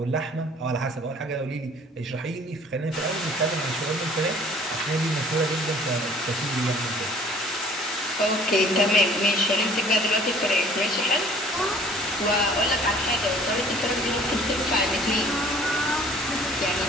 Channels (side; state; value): both; normal; correlation 0.53